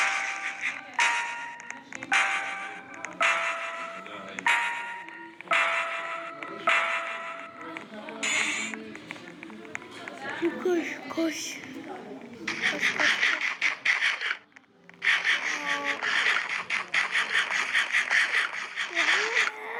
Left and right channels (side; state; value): both; identical; correlation 1.00